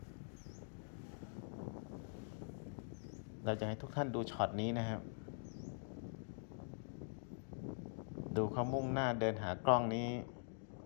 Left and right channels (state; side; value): silent; right; digital silence